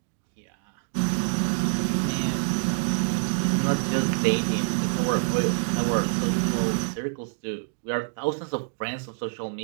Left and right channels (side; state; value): left; silent; digital silence